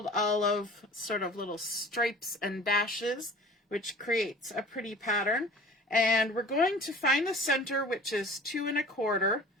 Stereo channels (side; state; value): both; normal; correlation 0.44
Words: olive, sort of little stripes and dashes, which creates a pretty pattern. And we're going to find the center, which is 2 1/4.